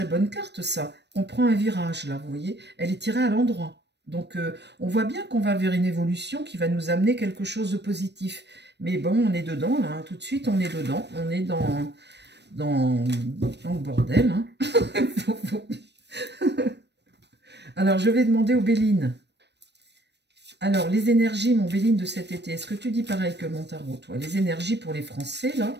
bonne carte, ça. On prend un virage, là, vous voyez. Elle est tirée à l'endroit. Donc, on voit bien qu'on va vers une évolution qui va nous amener quelque chose de positif. Mais bon, on est dedans, là. Hein. Tout de suite, on est dedans. On est dans le bordel. Hein. Alors, je vais demander aux Béline. Alors, les énergies, mon Béline, de cet été, est-ce que tu dis pareil que mon tarot, toi? Les énergies pour les Français, là.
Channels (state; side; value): late; left; 0.50 ms